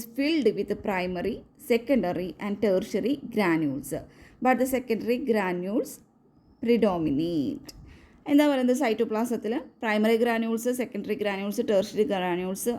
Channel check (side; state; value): both; identical; correlation 1.00